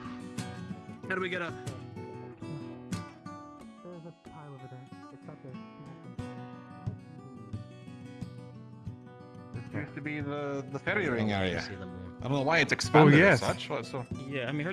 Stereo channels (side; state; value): both; identical; correlation 1.00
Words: How do we get up? There's a pile over there. It's up there. This used to be the ferry ring area. I don't know why it's expanded as such. So Yeah, I mean,